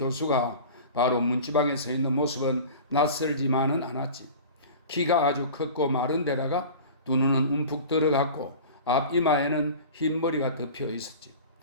바로 문지방에 서 있는 모습은 낯설지만은 않았지. 키가 아주 컸고 마른 데다가 두 눈은 움푹 들어갔고 앞 이마에는 흰 머리가 덮여 있었지.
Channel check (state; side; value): inverted; both; correlation -0.37